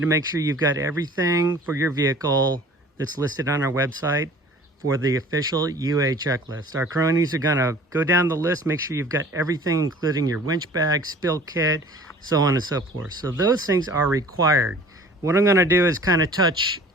to make sure you've got everything for your vehicle that's listed on our website for the official UA checklist. Our cronies are gonna go down the list, make sure you've got everything, including your winch bag, spill kit, so on and so forth. So those things are required. What I'm gonna do is kind of touch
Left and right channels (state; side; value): normal; both; correlation 0.47